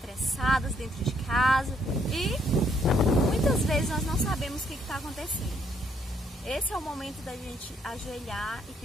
dentro de casa e muitas vezes nós não sabemos o que está acontecendo. Esse é o momento da gente ajoelhar e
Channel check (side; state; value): both; normal; correlation 0.69